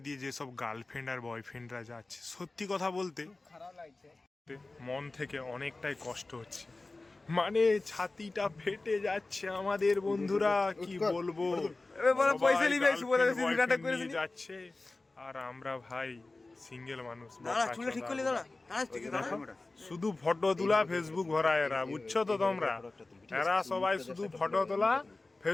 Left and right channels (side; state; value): right; quieter; 3.2 dB